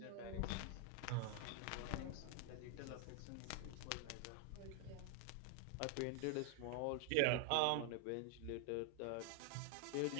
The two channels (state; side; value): different; both; correlation 0.00